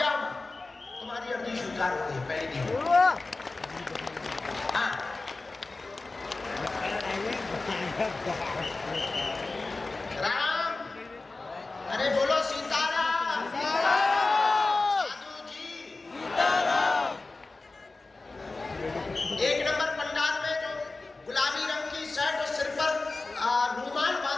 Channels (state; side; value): quieter; right; 3.4 dB